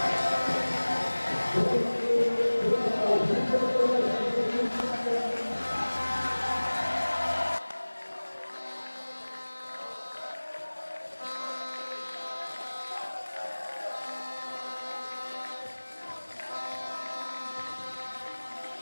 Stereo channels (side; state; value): both; inverted; correlation -1.00